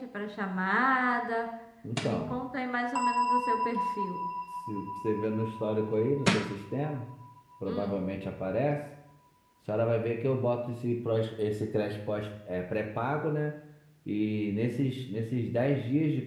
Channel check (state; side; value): identical; both; correlation 1.00